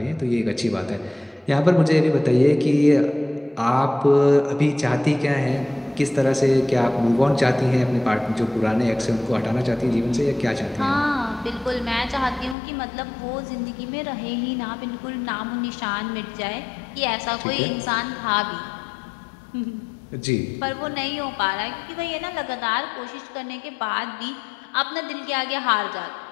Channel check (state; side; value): drops out; right; at 12.6 s